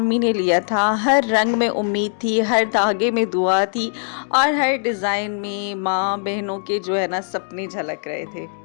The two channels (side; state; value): right; silent; digital silence